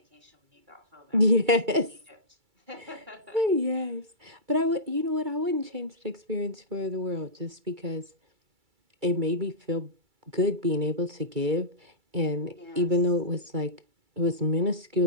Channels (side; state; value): left; late; 2.3 ms